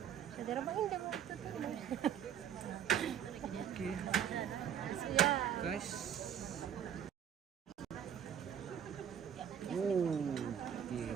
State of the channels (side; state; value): left; quieter; 8.9 dB